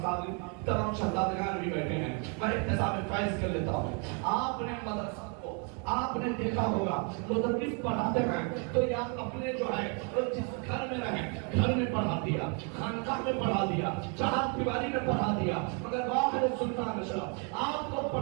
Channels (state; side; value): quieter; left; 37.2 dB